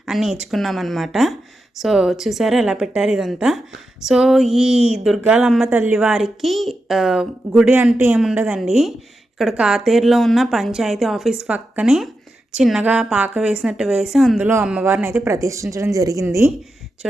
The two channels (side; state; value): both; normal; correlation 0.89